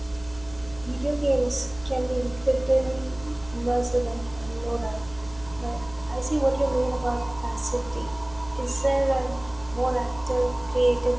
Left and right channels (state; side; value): noise; left; hum, 20 dB below the sound